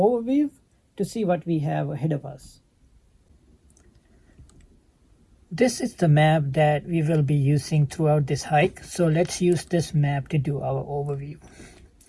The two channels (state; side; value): identical; both; correlation 1.00